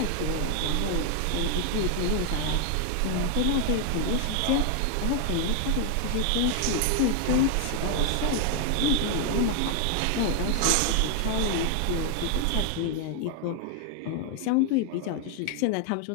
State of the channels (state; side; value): different; both; correlation 0.00